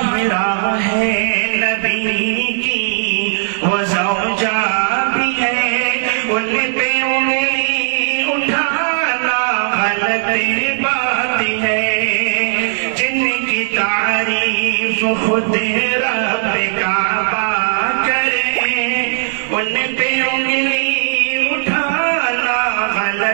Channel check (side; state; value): left; silent; 63 dB below the other